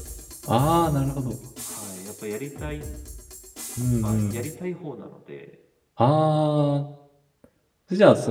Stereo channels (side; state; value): both; identical; correlation 1.00